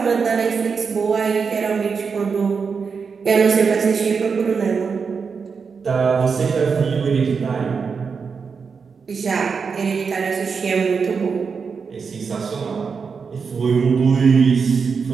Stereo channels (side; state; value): left; quieter; 5.6 dB